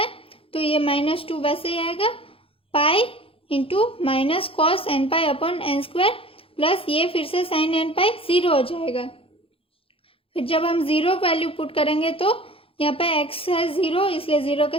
तो ये -2 वैसे ही आएगा, pi into minus cos n pi upon n square plus ये फिर से साइन एन पाई 0 हो जाएगा। फिर जब हम 0 वैल्यू पुट करेंगे तो यहाँ पे x है 0 इसलिए 0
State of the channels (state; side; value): late; right; 0.27 ms